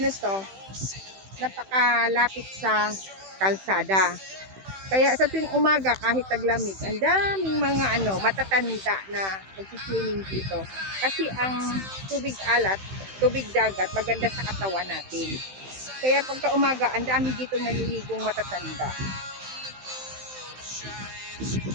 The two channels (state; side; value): late; left; 16 ms